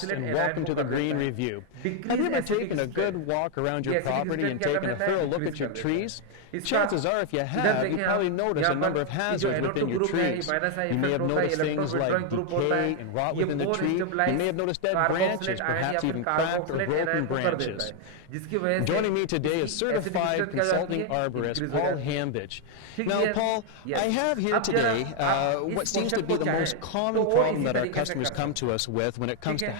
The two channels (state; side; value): different; both; correlation 0.00